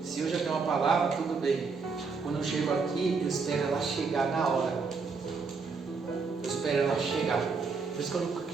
Se eu já tenho uma palavra, tudo bem. Quando eu chego aqui, eu espero ela chegar na hora. Eu espero ela chegar. Por isso que eu nunca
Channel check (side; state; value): left; quieter; 4.8 dB